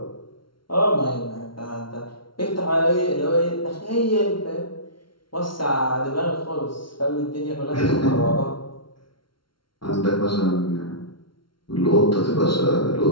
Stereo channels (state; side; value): late; right; 0.73 ms